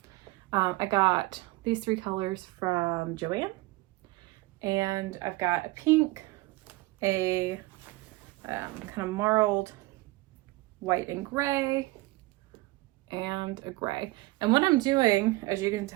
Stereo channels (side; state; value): left; quieter; 20.8 dB